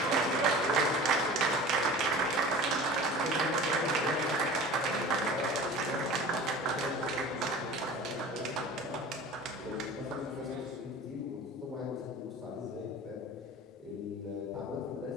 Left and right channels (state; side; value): normal; both; correlation 0.38